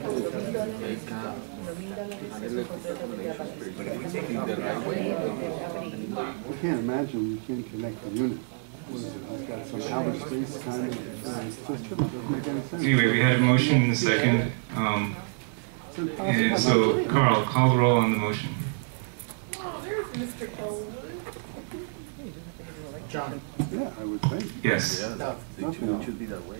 I can't imagine you can't connect the unit. What is it? It's got some outer space kind of system. It doesn't make any sense. Anyway, we had a motion and a second. And so, Carl, call the roll on the motion. John. Yeah, I would think. Yes. Yeah, it should be that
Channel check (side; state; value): left; silent; 59 dB below the other